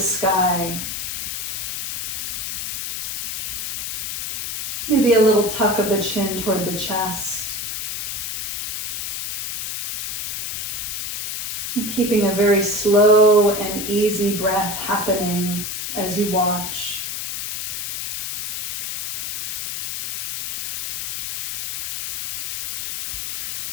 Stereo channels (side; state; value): left; noise; hiss, 3 dB below the sound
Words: Maybe a little tuck of the chin toward the chest. And keeping a very slow and easy breath happening as you watch.